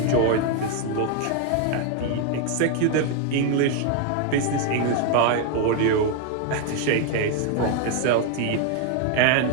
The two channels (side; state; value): both; different; correlation 0.00